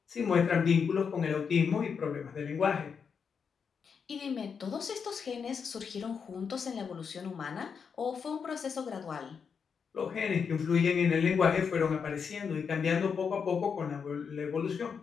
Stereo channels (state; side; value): quieter; right; 6.3 dB